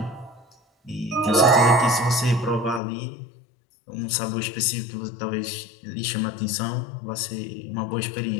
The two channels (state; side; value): drops out; right; at 2.8 s